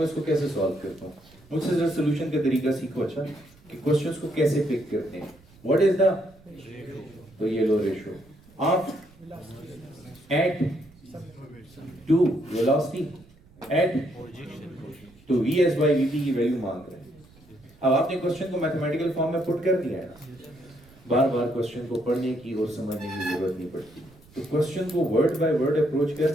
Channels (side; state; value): right; noise; rumble, 26 dB below the sound